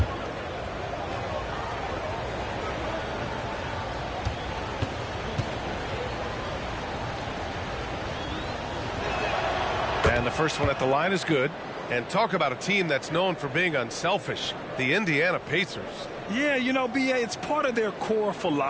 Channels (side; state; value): both; identical; correlation 1.00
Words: And the first one at the line is good. And talk about a team that's known for being unselfish, the Indiana Pacers. Yeah, you know, BA, it's part of their core